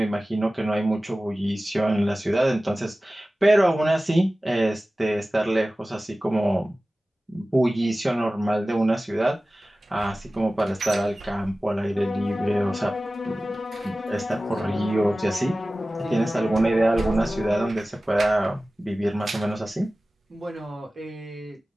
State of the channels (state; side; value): normal; both; correlation 0.96